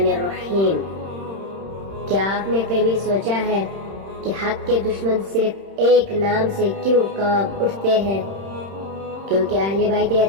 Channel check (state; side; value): late; left; 31 ms